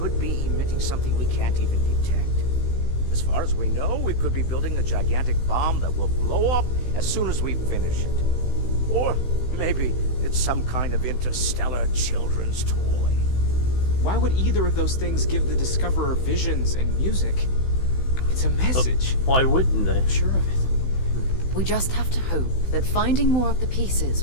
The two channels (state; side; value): late; right; 16 ms